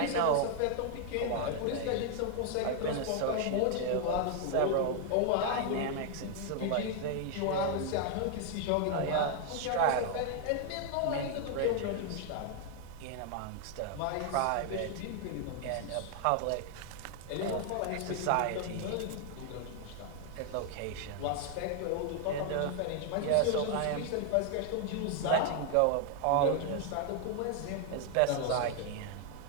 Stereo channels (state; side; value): different; both; correlation 0.00